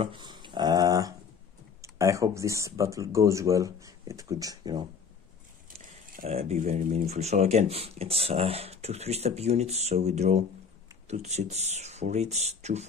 I hope this battle goes well. It could, you know, be very meaningful. So again, it's 2 3-step units. So we draw 2 Chits for each, 2,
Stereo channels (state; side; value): quieter; right; 6.0 dB